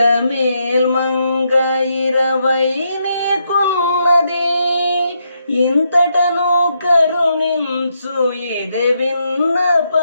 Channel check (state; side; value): inverted; both; correlation -0.79